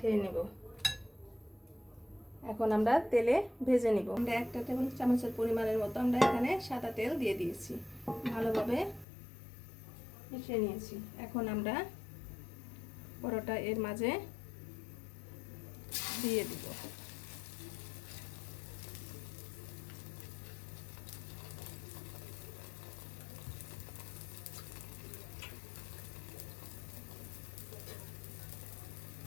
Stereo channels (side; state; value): right; drops out; at 9.1 s